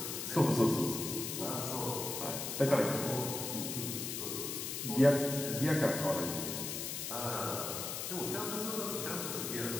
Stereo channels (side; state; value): left; noise; hiss, 4 dB below the sound